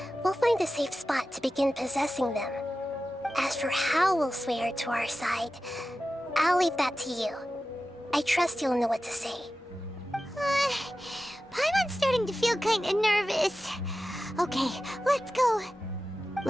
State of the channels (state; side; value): normal; both; correlation 0.94